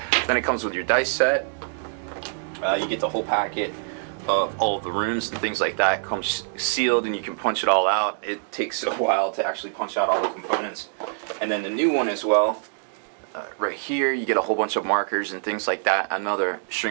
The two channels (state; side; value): silent; left; digital silence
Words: Then it comes with your dice set, You get the whole packet of all of the rooms and things like that. It comes sealed and you can punch it all out. It takes a while to actually punch out all the components. And then the new one as well, right here you get a whole bunch of markers and things like that. Another